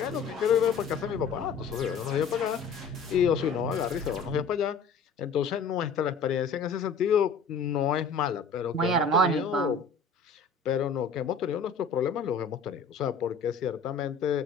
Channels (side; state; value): right; quieter; 5.0 dB